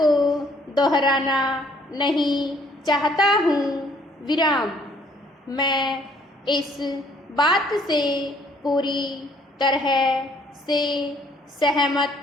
दोहराना नहीं चाहता हूँ। विराम। मैं इस बात से पूरी तरह से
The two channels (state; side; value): normal; both; correlation 0.62